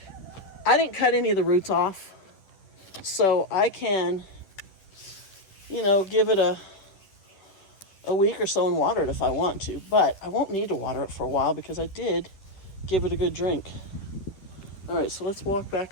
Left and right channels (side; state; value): right; late; 10 ms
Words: I didn't cut any of the roots off. So I can, you know, give it a week or so and water it if I want to. But I won't need to water it for a while because I did give it a good drink. All right, so let's walk